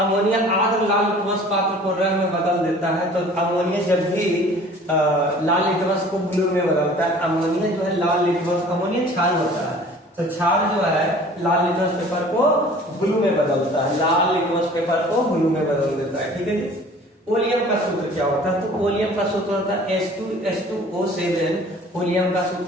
लाल लिटमस पात्र को रंग में बदल देता है। तो अमोनिया जब भी लाल लिटमस को ब्लू में बदलता है, अमोनिया जो है लाल लिटमस, अमोनिया क्षार होता है, तो क्षार जो है लाल लिटमस पेपर को ब्लू में बदलता है, लाल लिटमस पेपर को ब्लू में बदल देता है। ठीक है जी। ओलियम का सूत्र क्या होता है? तो ओलियम का सूत्र होता है H2SO7 ओलियम का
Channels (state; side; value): normal; both; correlation 0.48